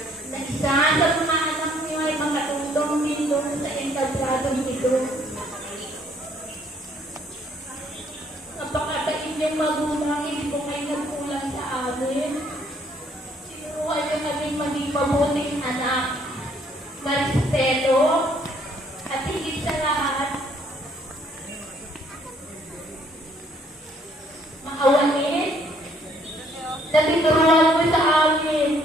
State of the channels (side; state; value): both; normal; correlation 0.65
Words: Isa sa mga anak niyo ay makatutong nindong sa entabladong ito. Napakabait niyong magulang, hindi po kayo nagkulang sa amin. Sinuruan niyo kaming maging mabuting anak, marespeto, at higit sa lahat, maawain na tinuruan mo sa amin.